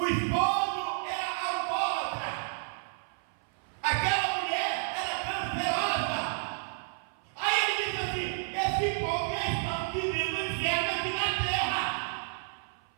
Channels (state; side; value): silent; left; 56 dB below the other